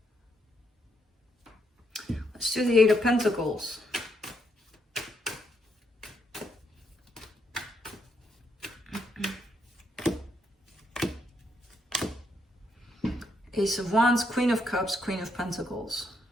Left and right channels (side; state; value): both; normal; correlation 0.77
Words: Let's do the Eight of Pentacles. Ace of Wands, Queen of Cups, Queen of Pentacles.